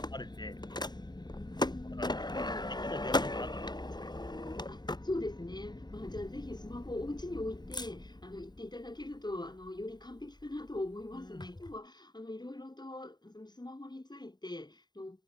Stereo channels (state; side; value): late; right; 0.21 ms